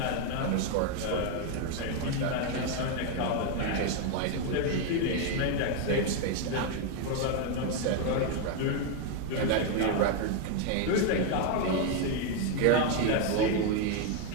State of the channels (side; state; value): both; different; correlation 0.01